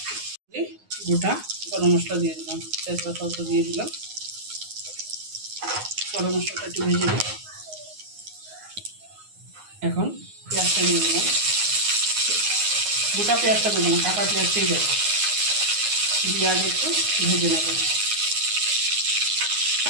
গোটা গরম মশলা দিয়ে দিলাম, তেজপাতা দিয়ে দিলাম। গরম মশলাটা একটু ভেজে দিই। এখন পেঁয়াজটা দিয়ে দিলাম। গোটা পেঁয়াজটা দেবো না, কাটা পেঁয়াজটাই দেবো। দিয়ে আগে একটু ভেজে নেব।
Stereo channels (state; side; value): late; left; 9.5 ms